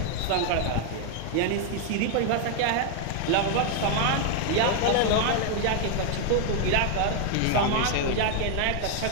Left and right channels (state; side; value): different; both; correlation 0.01